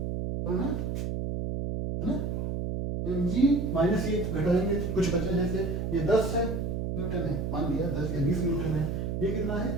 तो ना है ना। एम जी माइनस ये घटाएंगे, कुछ बचा, जैसे ये 10 है न्यूटन है, मान लिया 10 या 20 न्यूटन है, ये कितना है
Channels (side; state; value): right; noise; hum, 2 dB below the sound